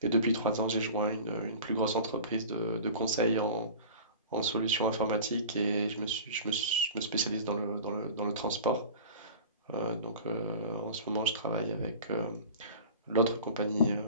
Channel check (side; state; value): both; inverted; correlation -0.38